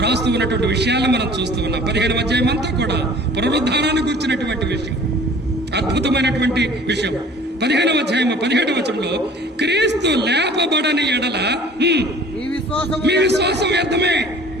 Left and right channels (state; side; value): normal; both; correlation 0.48